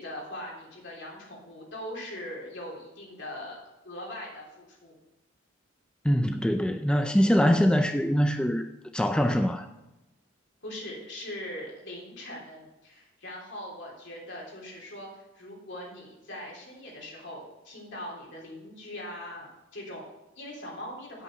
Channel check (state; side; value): normal; both; correlation 0.88